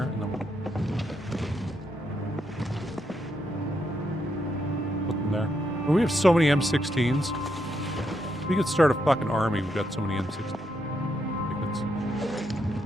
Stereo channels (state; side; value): noise; left; rumble, 28 dB below the sound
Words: and then we'll put them there. Well, we have so many M16s. We could start a fucking army. We've got so many M16s. Like it's